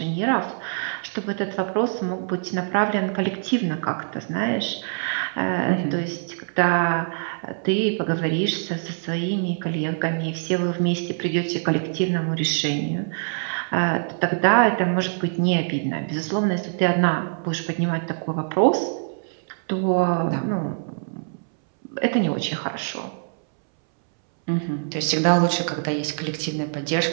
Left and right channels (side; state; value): left; silent; 62 dB below the other